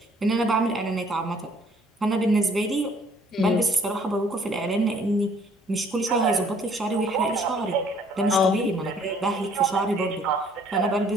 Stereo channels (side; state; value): both; normal; correlation 0.60